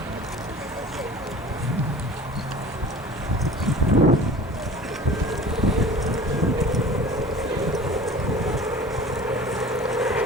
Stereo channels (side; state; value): both; normal; correlation 0.41